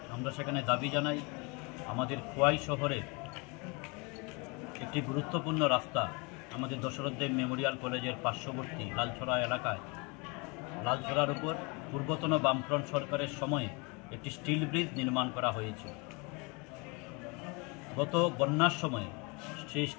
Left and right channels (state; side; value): quieter; right; 29.7 dB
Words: আমরা সেখানে দাবি জানাই আমাদের খোয়াই শহরে একটি গুরুত্বপূর্ণ রাস্তা, আমাদের দশরথ দেব মেমোরিয়াল কলেজের পার্শ্ববর্তী লালছড়া এলাকায়, লালছড়ার উপর পূর্বতন বামফ্রন্ট সরকারের সময়ে একটি স্টিল ব্রিজ নির্মাণ করা হয়েছিল। গত বন্যার সময়ে সেই